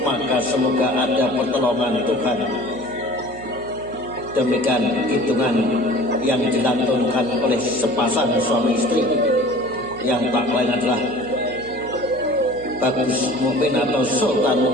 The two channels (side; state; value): right; noise; hum, 18 dB below the sound